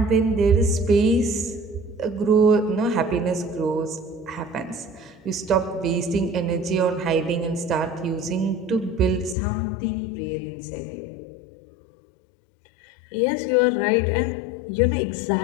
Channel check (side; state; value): right; drops out; at 9.3 s